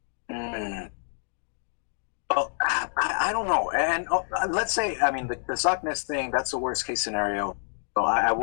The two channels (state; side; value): silent; right; digital silence